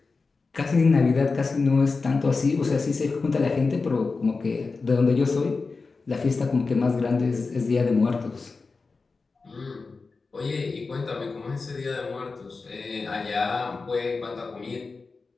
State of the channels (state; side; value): quieter; right; 4.2 dB